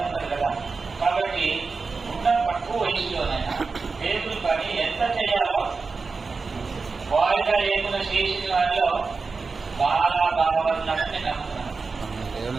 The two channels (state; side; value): quieter; left; 4.4 dB